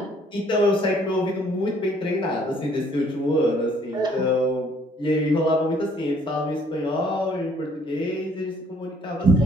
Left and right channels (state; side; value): normal; both; correlation 0.61